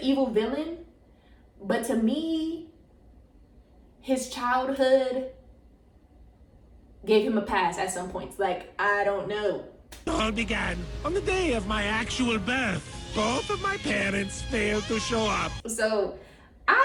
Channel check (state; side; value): identical; both; correlation 1.00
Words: evil villain, but to me, his childhood gave him a pass at some points. Like, I don't know. All began on the day of my actual birth. Both of my parents failed to show up. So,